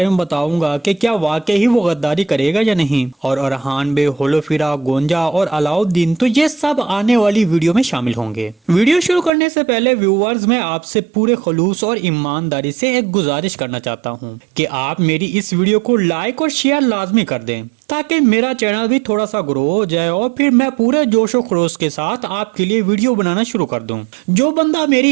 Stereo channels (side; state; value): left; drops out; at 9.3 s